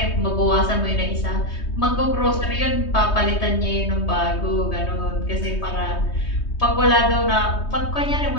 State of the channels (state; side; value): late; right; 3.2 ms